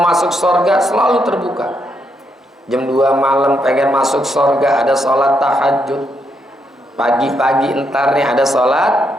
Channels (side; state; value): both; normal; correlation 0.78